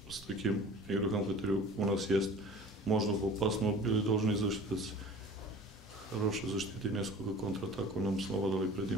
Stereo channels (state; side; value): normal; both; correlation 0.43